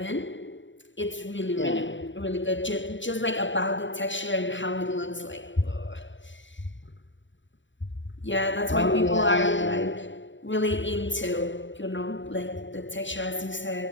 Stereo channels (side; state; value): right; late; 0.54 ms